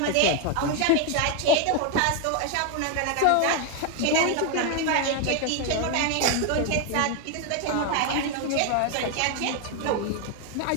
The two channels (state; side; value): different; both; correlation 0.01